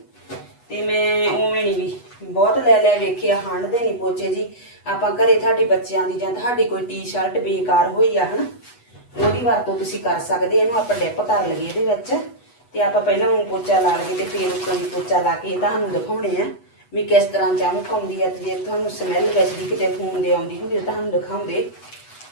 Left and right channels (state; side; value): late; right; 8.1 ms